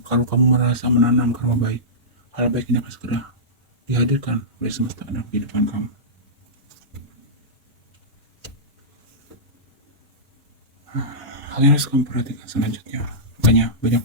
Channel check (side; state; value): both; normal; correlation -0.16